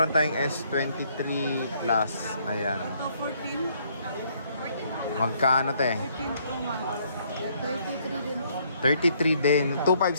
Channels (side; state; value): both; inverted; correlation -0.67